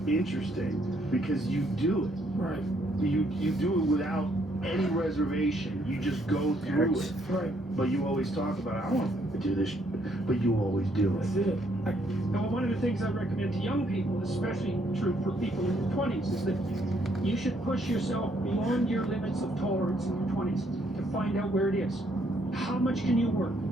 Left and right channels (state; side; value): normal; both; correlation 0.70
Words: interesting, because you do it. Right. You do it without any reservation. You just go through it. Right. But you always talk about, I want to do this, but you always do it. That's it. Now, one of the things I recommend to young people, especially true for people in their 20s, is that you should push yourself beyond your limits of tolerance in your 20s to find out where it is. How much can you work?